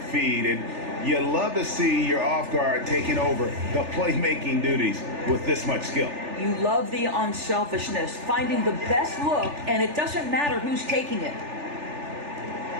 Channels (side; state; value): left; late; 3.4 ms